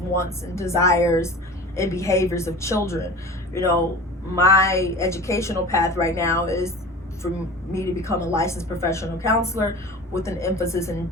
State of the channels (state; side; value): normal; both; correlation 0.37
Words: and desires and behaviors of children. You know, my educational path right now is for me to become a licensed professional counselor with an emphasis in